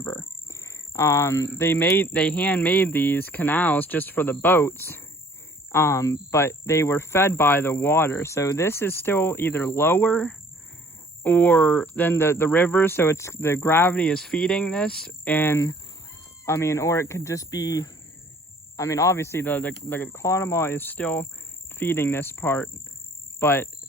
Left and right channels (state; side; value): normal; both; correlation 0.55